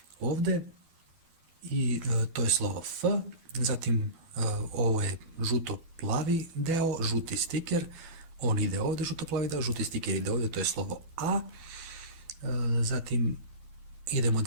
ovde i to je slovo F, zatim ovo je žuto-plavi deo, žuti stiker, on ide ovde, žuto-plavi deo, žuti stiker ide ovde, to je slovo A, zatim idemo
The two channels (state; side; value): late; left; 12 ms